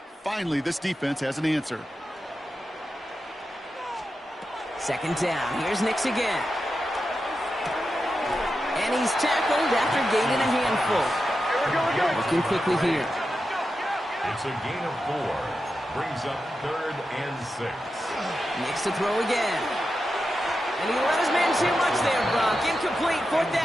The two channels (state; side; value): normal; both; correlation 0.90